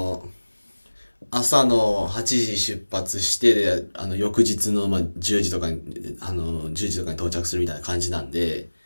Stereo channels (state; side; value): inverted; both; correlation -1.00